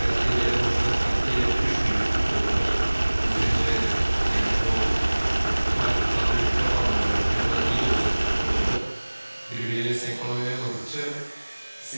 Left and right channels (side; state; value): both; inverted; correlation -1.00